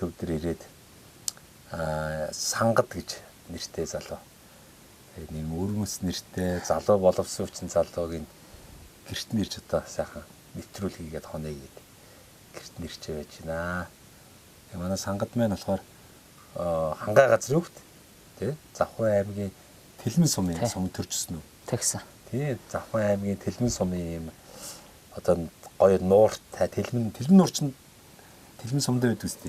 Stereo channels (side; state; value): both; identical; correlation 1.00